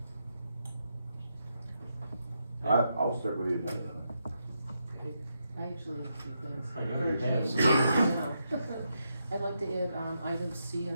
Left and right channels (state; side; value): inverted; both; correlation -0.83